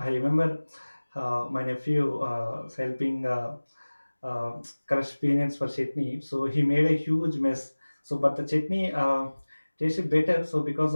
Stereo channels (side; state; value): both; inverted; correlation -1.00